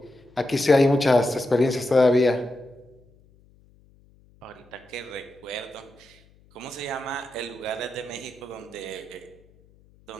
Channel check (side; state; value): left; noise; hum, 29 dB below the sound